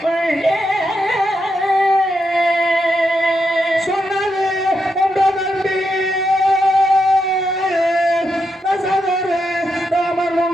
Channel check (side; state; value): both; normal; correlation 0.83